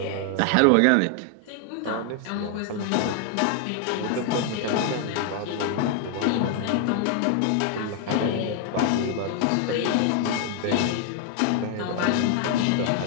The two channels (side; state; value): both; different; correlation 0.00